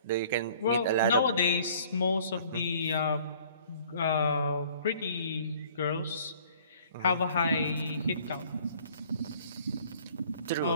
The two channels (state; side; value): inverted; both; correlation -0.54